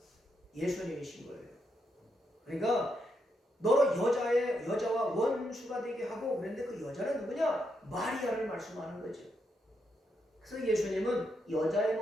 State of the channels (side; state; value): both; normal; correlation 0.81